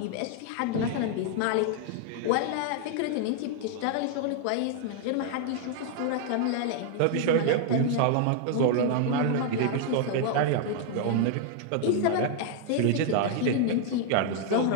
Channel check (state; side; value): different; both; correlation 0.00